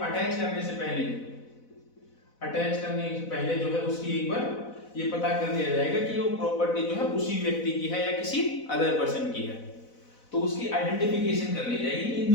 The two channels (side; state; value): right; late; 4.0 ms